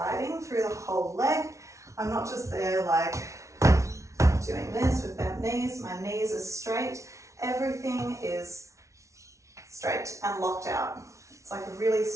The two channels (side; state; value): left; late; 0.14 ms